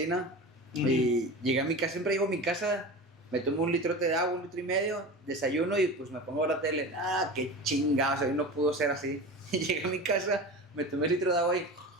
Y llegué a mi casa, siempre llego a mi casa, me tomo un litrote de agua, 1,5 litros, desayuno y pues me pongo a ver la tele. Qué chingados, hoy no pudo ser así. Y llegué a mi casa, me tomé el litro de agua y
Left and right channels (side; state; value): both; normal; correlation 0.31